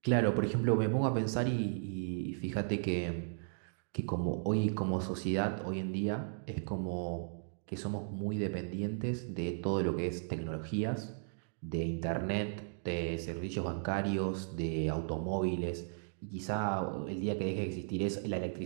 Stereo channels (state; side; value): silent; left; digital silence